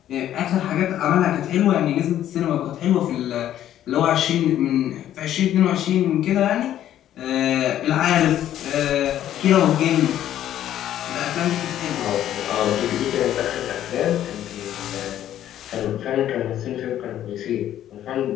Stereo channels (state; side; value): quieter; right; 11.7 dB